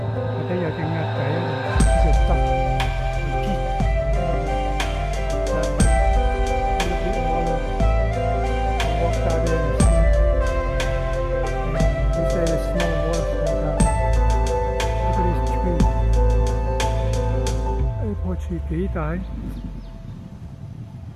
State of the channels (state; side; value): identical; both; correlation 1.00